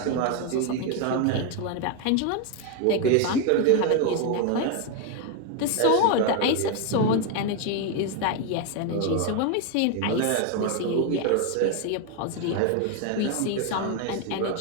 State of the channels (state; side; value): different; both; correlation 0.01